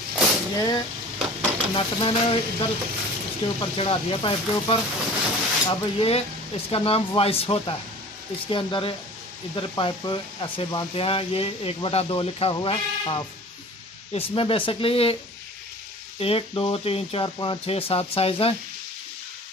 ये नट मैंने इधर इसके ऊपर चढ़ा दिया, पाइप के ऊपर। अब ये इसका नाम वाइस होता है। इसके अंदर इधर पाइप ऐसे बांधते हैं, ये 1/2 लिखा हुआ है, हाफ। इसमें बेसिकली 1 2 3 4 5 6 7 साइज़ हैं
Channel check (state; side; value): normal; both; correlation 0.42